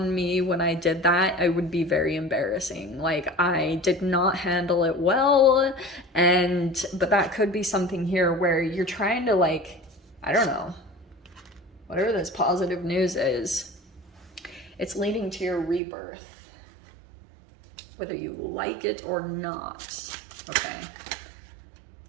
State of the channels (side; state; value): left; drops out; at 15.8 s